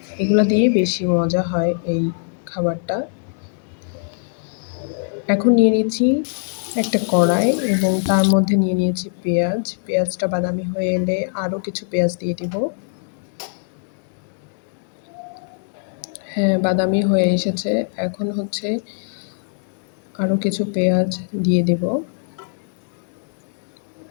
এগুলা দিয়ে বেশি মজা হয় এই খাবারটা। এখন নিয়ে নিচ্ছি একটা কড়াই এবং তার মধ্যে নিয়ে নিয়েছি পেঁয়াজ। পেঁয়াজটা বাদামি হয়ে এলে আরও কিছু পেঁয়াজ দিয়ে দিব। হ্যাঁ, বাদামি হয়ে এসেছে। এখন আরও কিছু পেঁয়াজ দিয়ে দেব।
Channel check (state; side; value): silent; right; digital silence